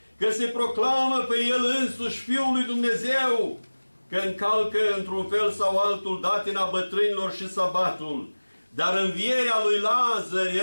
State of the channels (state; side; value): inverted; both; correlation -1.00